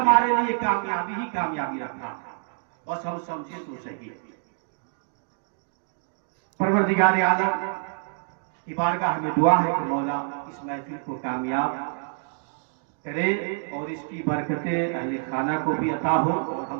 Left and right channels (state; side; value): silent; left; digital silence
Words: लिए कामयाबी ही कामयाबी रखा। बस हम समझे तो सही। परवरदिगार आलम की बारगाह में दुआ है कि मौला इस महफिल को कामयाब करे और इसकी बरकतें अहले खाना को भी अता हो और